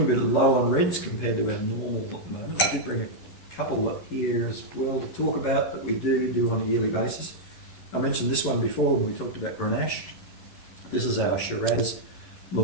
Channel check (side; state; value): right; late; 11 ms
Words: low on reds compared to our normal at the moment. I did bring a couple up here as well to talk about that we do on a yearly basis. I mentioned this one before when we talked about Grenache. This is our Shiraz